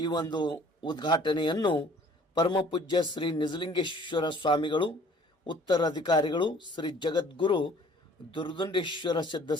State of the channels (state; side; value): normal; both; correlation 0.53